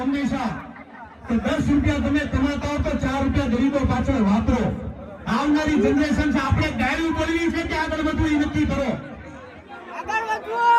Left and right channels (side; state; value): both; identical; correlation 1.00